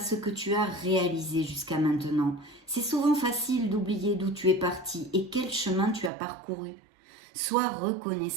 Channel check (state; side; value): drops out; left; at 6.1 s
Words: que tu as réalisé jusqu'à maintenant. C'est souvent facile d'oublier d'où tu es parti et quel chemin tu as parcouru. Sois